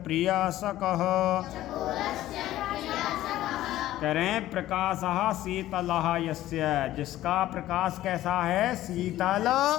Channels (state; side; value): quieter; right; 14.5 dB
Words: प्रियासकः। करें प्रकाशः शीतलः यस्य, जिसका प्रकाश कैसा है? शीतल।